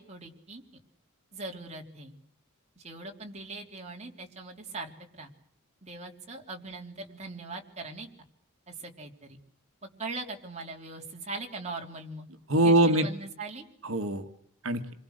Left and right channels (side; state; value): both; normal; correlation -0.05